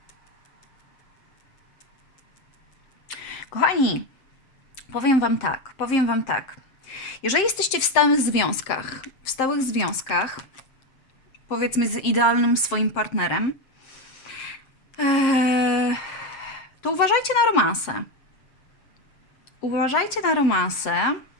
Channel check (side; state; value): right; late; 7.6 ms